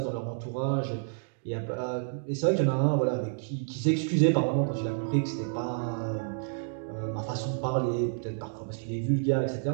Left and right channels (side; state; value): left; silent; digital silence